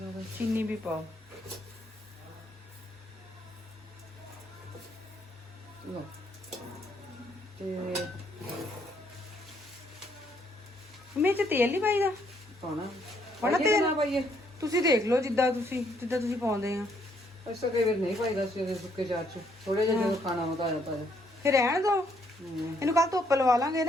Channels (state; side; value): normal; both; correlation 0.70